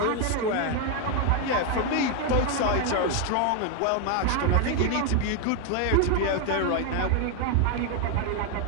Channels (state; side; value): different; both; correlation 0.01